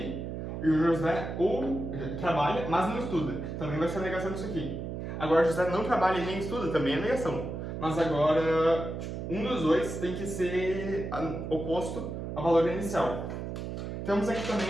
E o José ou trabalha, mas não estuda. Também vai ser a negação disso aqui. Agora, José não trabalha e nem estuda, também é negação. Mas agora, um dos dois tem que ser oposto ao valor inicial. Temos aqui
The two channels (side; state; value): right; noise; hum, 6 dB below the sound